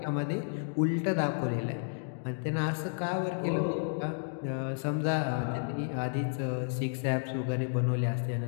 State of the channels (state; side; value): silent; right; digital silence